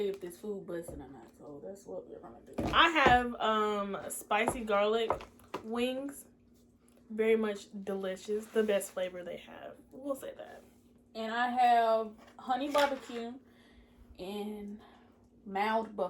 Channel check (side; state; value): both; identical; correlation 1.00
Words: you if this food busting or not. So that's what we're gonna do. I have spicy garlic wings. Very much delicious. The best flavor they have. We'll say that. And I have honey barbecue and mild